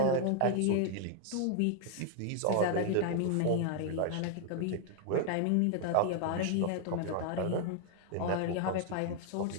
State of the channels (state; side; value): different; both; correlation 0.00